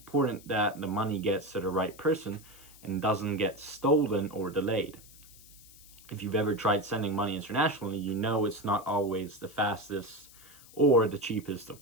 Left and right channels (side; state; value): left; noise; hiss, 22 dB below the sound